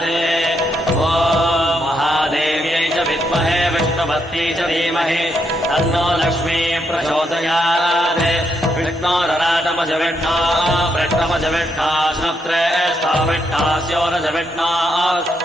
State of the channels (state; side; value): normal; both; correlation 0.78